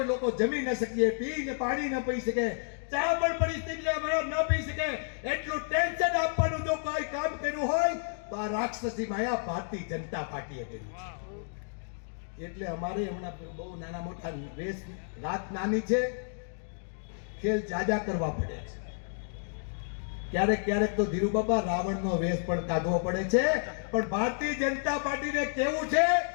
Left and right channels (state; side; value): silent; right; digital silence